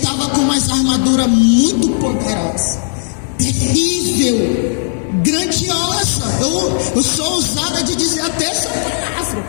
com umas armaduras muito poderosas, terrível, grandiosa. Eu sou ousada de dizer até essa palavra,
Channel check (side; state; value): right; silent; 61 dB below the other